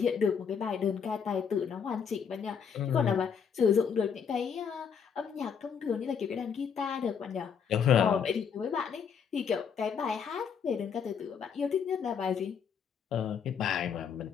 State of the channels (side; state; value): right; quieter; 7.0 dB